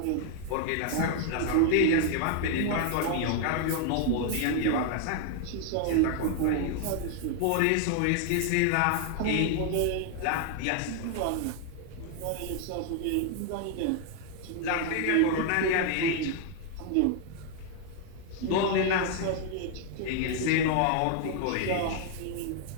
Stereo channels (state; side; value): different; both; correlation 0.00